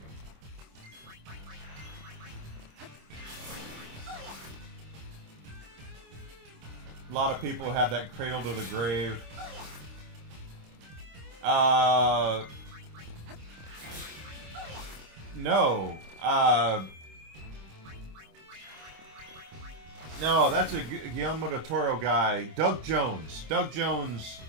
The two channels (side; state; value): left; late; 26 ms